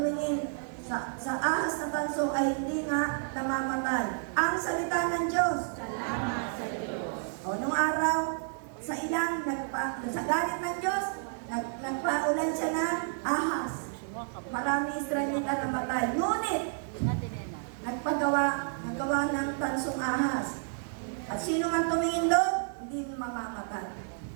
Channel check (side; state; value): left; silent; digital silence